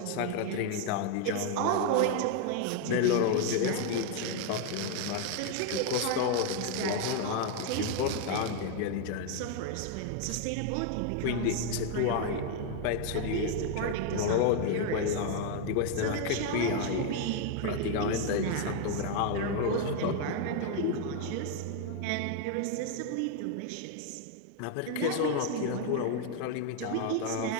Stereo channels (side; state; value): both; different; correlation 0.01